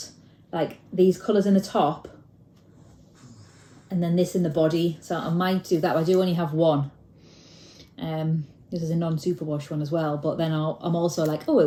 like these colours in the top and then this in the body. So I might do that. I do only have one. This is a non-superwash one as well, but then I'm also like, oh,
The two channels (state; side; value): identical; both; correlation 1.00